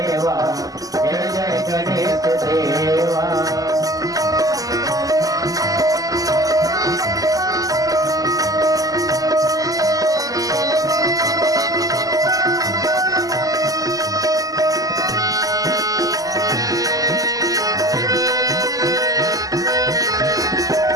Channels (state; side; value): late; left; 0.17 ms